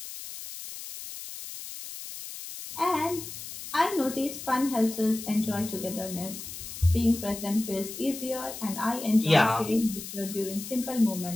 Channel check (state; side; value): noise; left; hiss, 10 dB below the sound